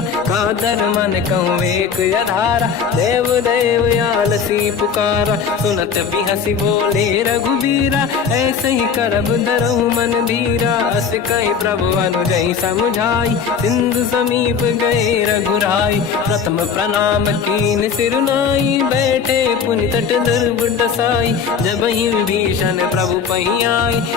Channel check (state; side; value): quieter; right; 6.4 dB